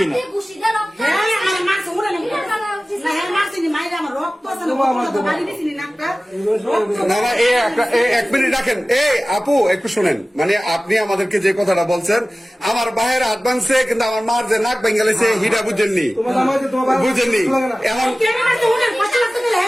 না না এক মিনিট রাখেন, আপু একটু শুনেন, মানে আপনি আমাদেরকে যে কথাটা বলছেন, আমার ভাইয়ের হাত ভাঙছে কিন্তু আমার মার যে নাক ভেঙে গেছে হিটা বুঝেননি, বুঝেননি। এখন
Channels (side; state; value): both; normal; correlation 0.97